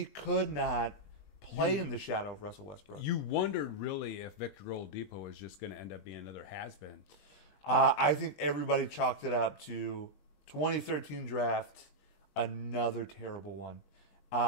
could not play in the shadow of Russell Westbrook. You wondered really if Victor Oladipo was just going to end up being another has-been. I think everybody chalked it up to 2013 draft, another terrible one.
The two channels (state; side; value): late; right; 21 ms